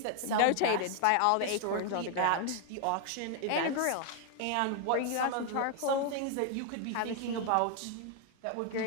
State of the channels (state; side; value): different; both; correlation 0.00